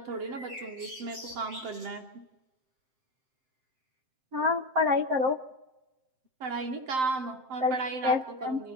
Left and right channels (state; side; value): late; left; 7.6 ms